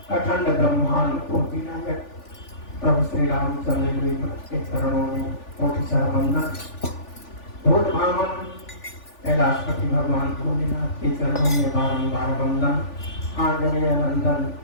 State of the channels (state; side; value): late; right; 3.4 ms